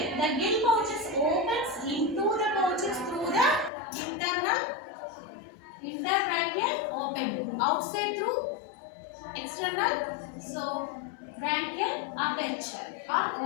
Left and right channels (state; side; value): drops out; right; at 3.7 s